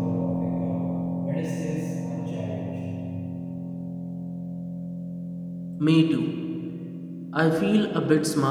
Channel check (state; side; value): identical; both; correlation 1.00